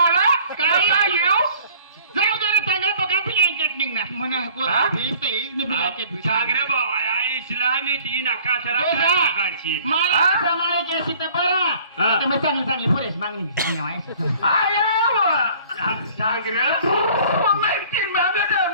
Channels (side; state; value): both; inverted; correlation -0.52